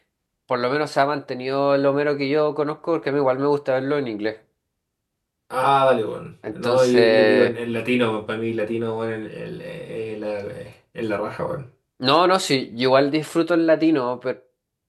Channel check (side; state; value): both; identical; correlation 1.00